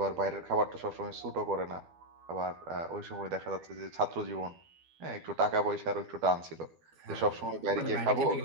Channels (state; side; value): late; left; 12 ms